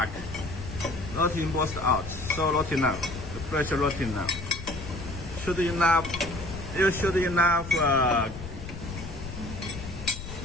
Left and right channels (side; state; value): left; noise; rumble, 10 dB below the sound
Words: not embossed out. So not enough. The pressure not enough. You should enough